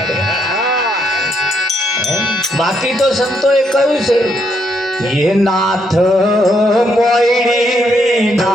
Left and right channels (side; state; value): both; normal; correlation 0.75